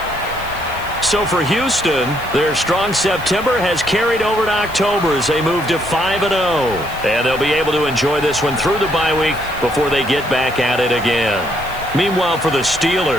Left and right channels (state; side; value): noise; left; hiss, 19 dB below the sound